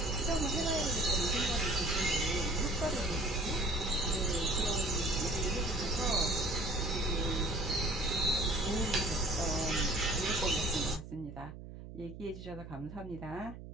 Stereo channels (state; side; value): noise; right; hum, 13 dB below the sound